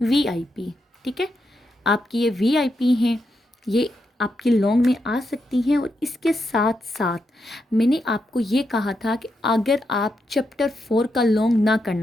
VIP, ठीक है, आपकी ये VIP हैं, ये आपकी लॉन्ग में आ सकती हैं। और इसके साथ साथ मैंने आपको ये कहा था कि अगर आप चैप्टर 4 का लॉन्ग ना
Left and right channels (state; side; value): normal; both; correlation 0.83